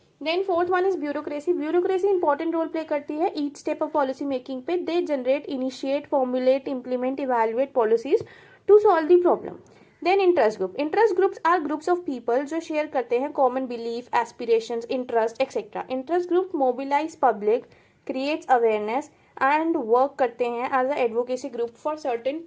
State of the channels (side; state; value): both; identical; correlation 1.00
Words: Then fourth one is bureaucracy. Bureaucracy important role play करती है each step of policy making पे। They generate, initiate, formulate, implement, evaluate policies to solve the problem. Then interest group. Interest groups are groups of people जो share करते हैं common belief, aspirations, interest etcetera. Interest group mobilize public, creates awareness and work करते हैं as a advocacy group for certain